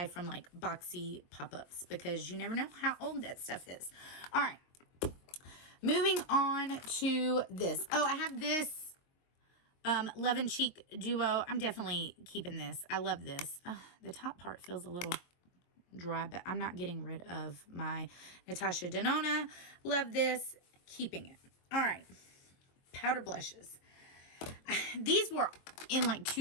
from like boxy pop-ups because you never know how old that stuff is. All right, moving on to this. Oh, I have this Love and Cheek Duo. I'm definitely keeping this. I love this. The top part feels a little dry, but I'm not getting rid of my Natasha Denona. Love this. Keeping it. All right. Powder blushes. These were in like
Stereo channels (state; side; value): late; right; 23 ms